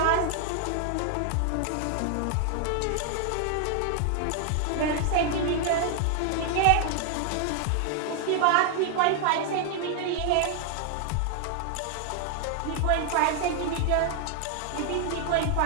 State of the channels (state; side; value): different; both; correlation 0.00